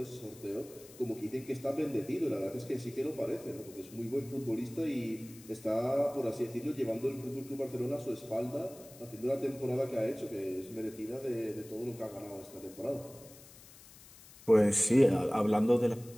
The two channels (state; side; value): noise; left; hiss, 20 dB below the sound